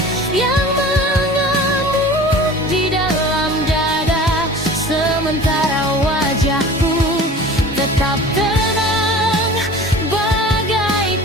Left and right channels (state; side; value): normal; both; correlation 0.41